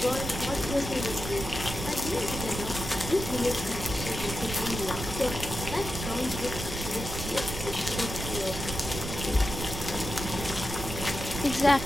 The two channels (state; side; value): noise; right; rumble, 6 dB below the sound